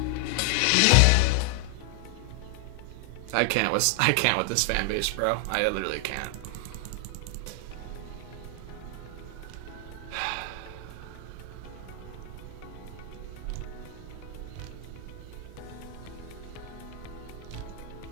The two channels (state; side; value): different; both; correlation 0.00